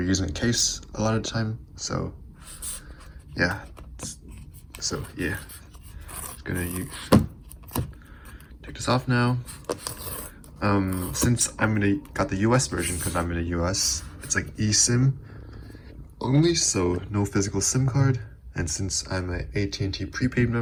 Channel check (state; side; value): identical; both; correlation 1.00